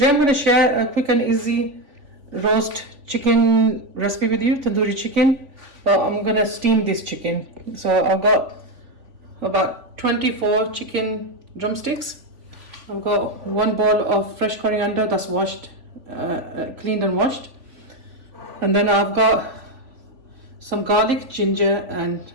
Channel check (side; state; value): left; late; 3.5 ms